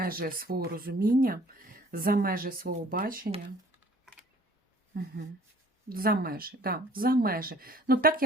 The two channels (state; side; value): normal; both; correlation 0.54